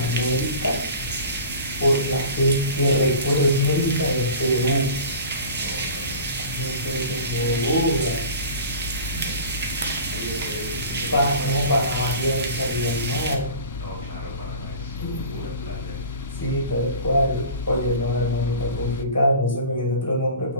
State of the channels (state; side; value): inverted; both; correlation -0.39